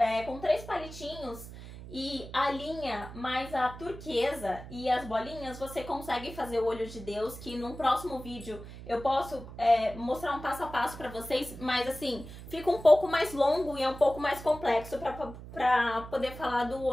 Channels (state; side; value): noise; right; hum, 13 dB below the sound